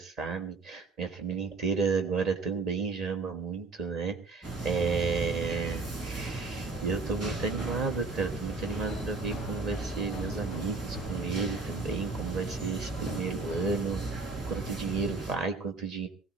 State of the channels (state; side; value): quieter; left; 3.8 dB